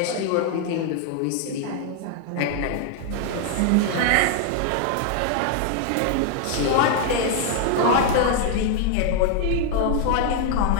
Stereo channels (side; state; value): both; different; correlation 0.00